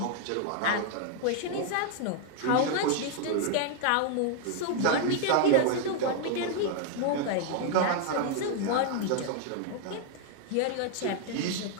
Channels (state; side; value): different; both; correlation 0.00